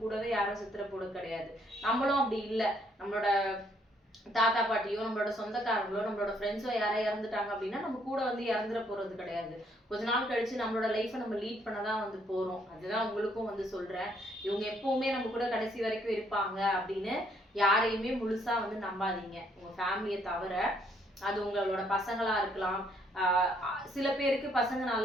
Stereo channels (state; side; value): normal; both; correlation 0.68